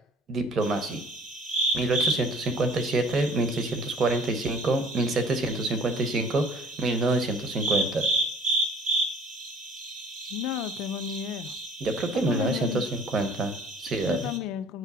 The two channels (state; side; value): normal; both; correlation 0.51